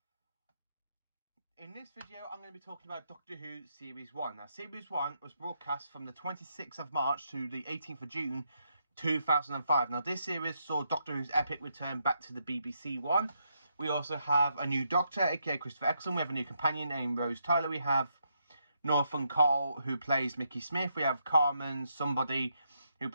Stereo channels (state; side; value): inverted; both; correlation -0.79